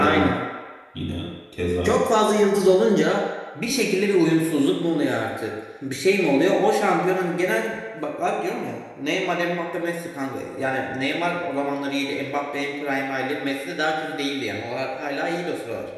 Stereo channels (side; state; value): both; identical; correlation 1.00